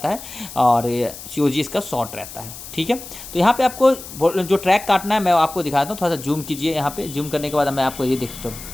है और COG इसका शॉर्ट रहता है, ठीक है। तो यहाँ पे आपको जो ट्रैक काटना है मैं आपको दिखाता हूँ। थोड़ा सा जूम कीजिए, यहाँ पे जूम करने के बाद मैं आपको ये देख सकता हूँ,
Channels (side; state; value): left; noise; hiss, 13 dB below the sound